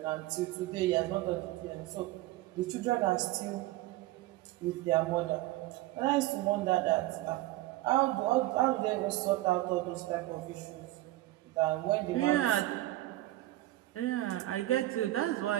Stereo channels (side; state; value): left; quieter; 16.9 dB